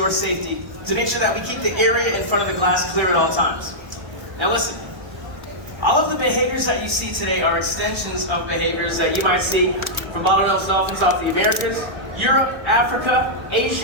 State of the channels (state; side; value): late; left; 1.3 ms